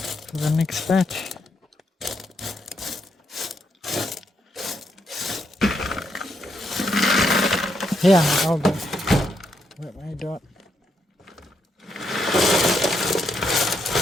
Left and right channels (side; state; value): both; normal; correlation 0.78